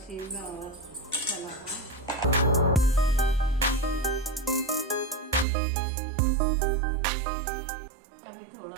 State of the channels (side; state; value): left; drops out; at 5.5 s